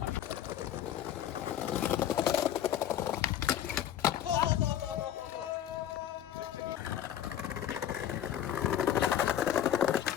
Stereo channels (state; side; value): quieter; right; 10.9 dB